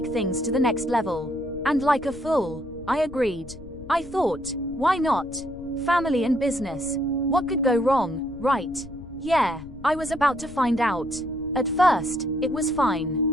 things to the next level. And like a fool, I agreed. I thought, why not? Family and business. What could go wrong, right? Yeah, I was about to find out. At first, it was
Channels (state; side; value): noise; left; rumble, 17 dB below the sound